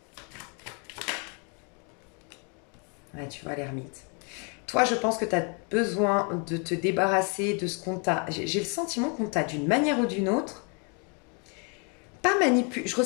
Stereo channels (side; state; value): right; quieter; 35.9 dB